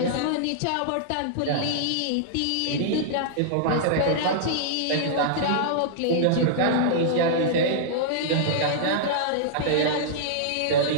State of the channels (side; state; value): both; different; correlation -0.02